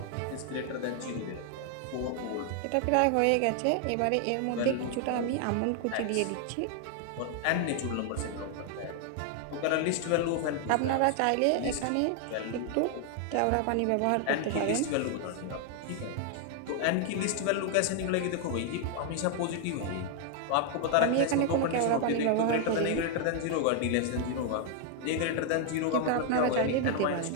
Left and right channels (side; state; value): both; different; correlation 0.00